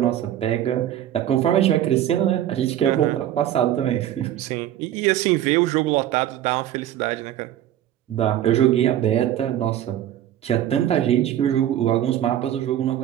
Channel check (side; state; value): left; quieter; 11.7 dB